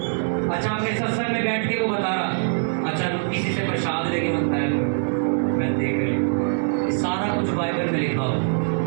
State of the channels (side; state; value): left; silent; digital silence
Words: अच्छा, अपने सत्संग में बैठ के वो बता रहा, अच्छा किसी से प्रसाद लेके बनता है, मैं देख रही, सारा कुछ बाइबल में लिखा हो,